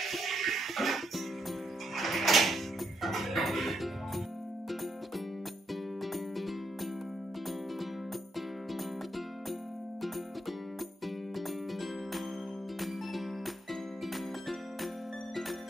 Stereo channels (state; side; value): normal; both; correlation 0.78